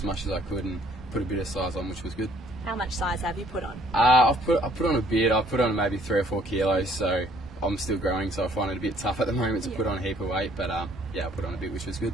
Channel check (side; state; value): both; normal; correlation 0.61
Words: much as I could and put a bit of size on, which was good. How much size have you put on? I put on a bit. I put on maybe 3 or 4 kilos, so I'm still growing, so I find it a bit tough at the moment to put on a heap of weight, but yeah, I put on a bit, which was good.